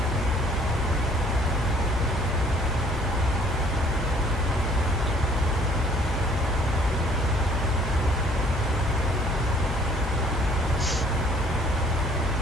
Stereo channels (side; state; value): both; normal; correlation 0.58